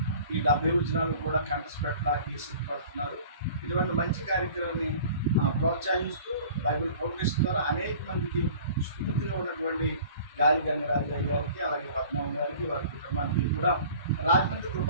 ఈ 70 వచనాలు కూడా కంటెస్ట్ పెట్టడానికి సిద్ధపడుతున్నారు. ఇటువంటి మంచి కార్యక్రమాన్ని ప్రోత్సహిస్తూ బైబిల్ ఫౌండేషన్ ద్వారా అనేక మందికి స్ఫూర్తిగా ఉన్నటువంటి గాలి గంగరాజు గారికి అలాగే పద్మనాభం గారికి వారి కుటుంబానికి కూడా రాజమండ్రి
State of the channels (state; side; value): inverted; both; correlation -0.46